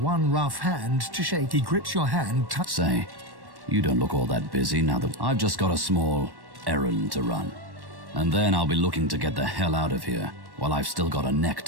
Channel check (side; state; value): left; late; 1.1 ms